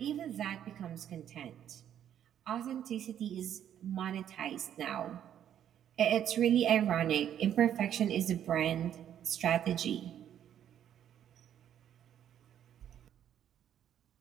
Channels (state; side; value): quieter; left; 10.1 dB